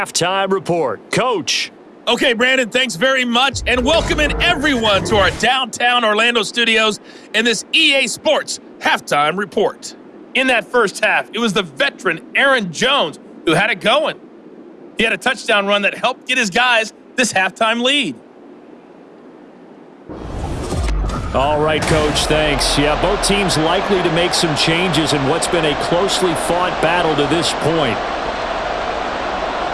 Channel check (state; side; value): identical; both; correlation 1.00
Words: Report. Coach. Okay, Brandon, thanks very much, and welcoming everyone to our downtown Orlando studios in this EA Sports Halftime Report. In that first half, it was the veteran Aaron Jones who had it going. He had a touchdown run that helped get his guys this halftime lead. All right, Coach, thanks. Yeah, both teams likely to make some changes in what's been a closely fought battle to this point.